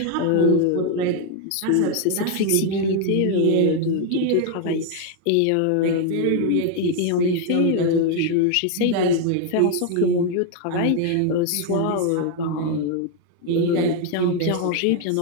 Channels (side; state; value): both; different; correlation 0.01